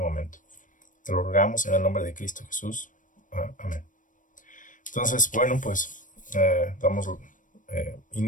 Te lo rogamos en el nombre de Cristo Jesús. Amén. Entonces, bueno, pues damos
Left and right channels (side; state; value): right; late; 0.38 ms